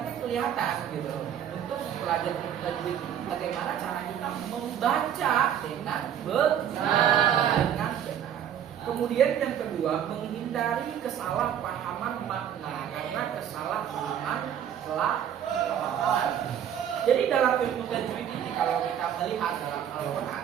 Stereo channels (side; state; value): left; quieter; 9.5 dB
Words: kelihatan gitu. Untuk mempelajari ilmu tajwid bagaimana cara kita membaca dengan benar. Kemudian yang kedua, menghindari kesalahpahaman makna karena kesalahpahaman pelafalan. Jadi dalam ilmu tajwid ini kalau kita melihat dalam Al-Qur'an,